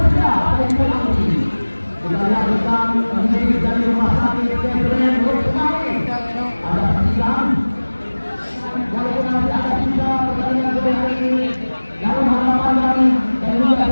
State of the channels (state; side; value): inverted; both; correlation -1.00